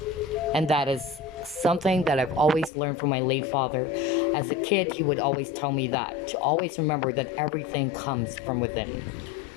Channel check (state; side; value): drops out; right; at 2.7 s